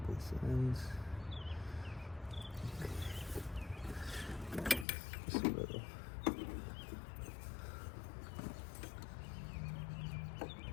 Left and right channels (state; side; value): drops out; right; at 4.9 s